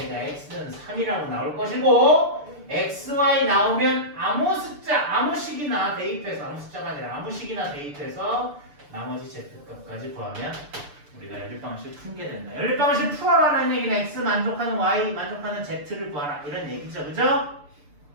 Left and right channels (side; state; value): left; late; 6.8 ms